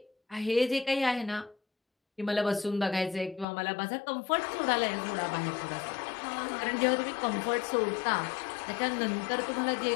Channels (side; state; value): right; drops out; at 3.5 s